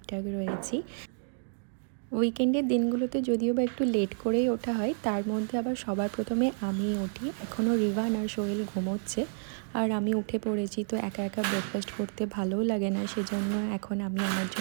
রয়েছি। উইকেন্ডের দিনগুলোতে যদিও বা একটু লেট করেই ওঠা হয়, তার মধ্যে আবার সবার প্রথমে আমিই উঠি। এখনও রিভান আর সোহেল ঘুমোচ্ছে আর আমি উঠে পড়েছি। তো একা একা ব্রেকফাস্ট করতে ভালোও লাগে না, সেজন্য এখন আমি আমার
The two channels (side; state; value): left; silent; digital silence